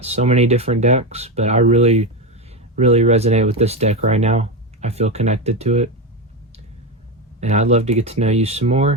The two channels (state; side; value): normal; both; correlation 0.14